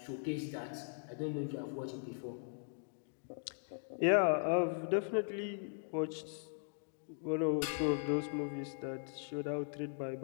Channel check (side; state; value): right; silent; digital silence